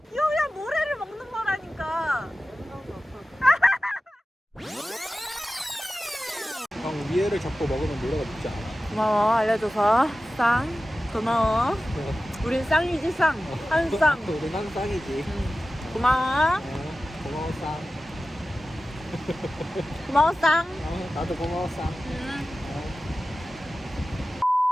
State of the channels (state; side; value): normal; both; correlation 0.95